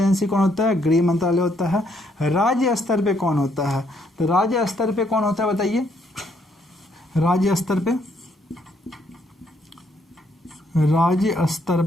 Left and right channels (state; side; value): normal; both; correlation 0.71